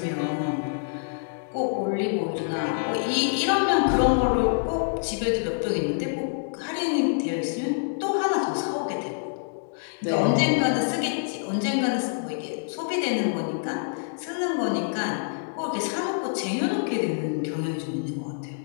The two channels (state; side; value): silent; right; digital silence